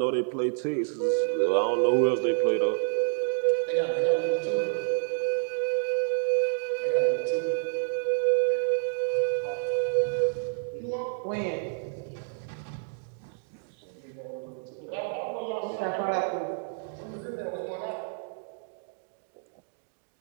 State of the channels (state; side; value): silent; left; digital silence